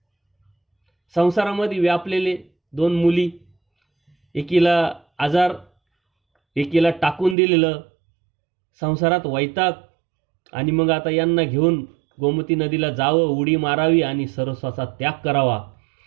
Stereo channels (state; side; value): drops out; left; at 7.4 s